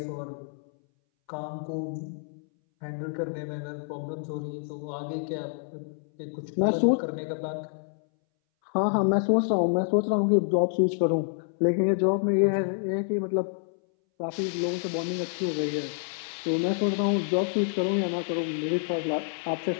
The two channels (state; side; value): silent; right; 59 dB below the other